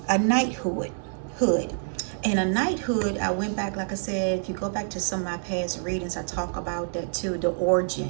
a knighthood. And a knighthood, I went back, like I said, if you go back to some of my past readings, I talk about that too, the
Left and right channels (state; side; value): silent; left; 60 dB below the other